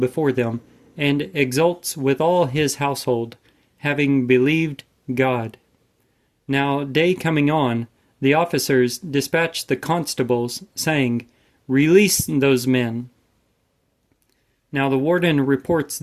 them, and exults with all his household, having believed God. Now day coming on, the officers dispatched the constables, saying, "Release those men." Now the warden reports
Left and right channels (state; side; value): identical; both; correlation 1.00